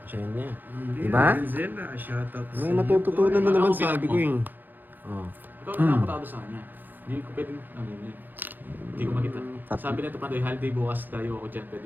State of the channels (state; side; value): late; left; 0.088 ms